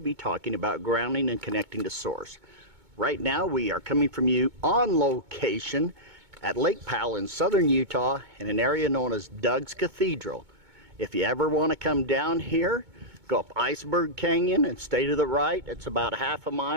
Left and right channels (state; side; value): late; left; 2.2 ms